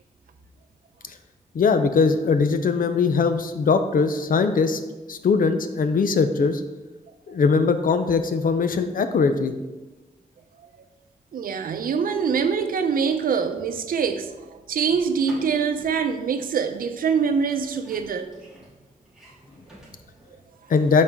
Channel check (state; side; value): normal; both; correlation 0.47